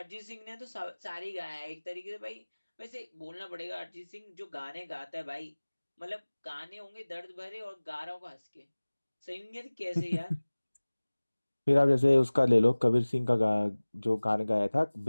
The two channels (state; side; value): inverted; both; correlation -1.00